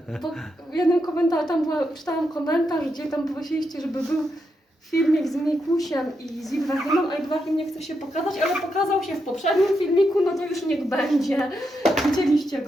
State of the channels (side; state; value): both; normal; correlation 0.83